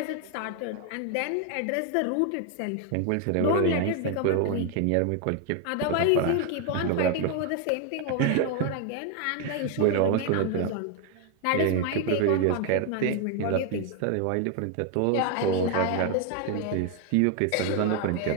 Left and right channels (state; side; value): different; both; correlation 0.01